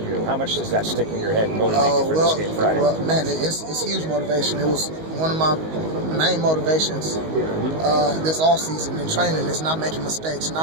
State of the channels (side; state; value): left; late; 19 ms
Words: how much does that stick in your head and motivate you for this game Friday? Well, man, it's huge motivation. It was one of my main motivations this offseason in training is not making mistakes, and